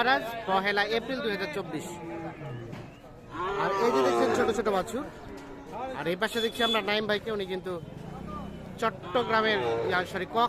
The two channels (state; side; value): identical; both; correlation 1.00